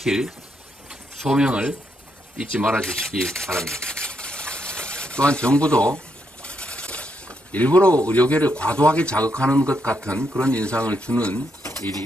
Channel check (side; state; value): both; normal; correlation 0.79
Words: 소명을 잊지 말아 주시기 바랍니다. 또한 정부도 일부러 의료계를 과도하게 자극하는 것 같은 그런 인상을 주는 일이